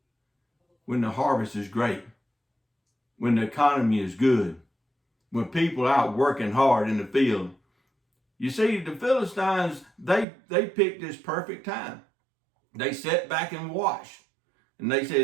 when the harvest is great, when the economy is good, when people are out working hard in the field. You see, the Philistines, they picked this perfect time. They sat back and watched. And they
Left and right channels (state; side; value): drops out; left; at 10.2 s